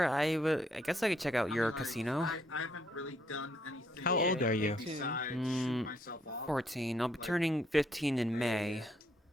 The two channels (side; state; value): both; normal; correlation 0.71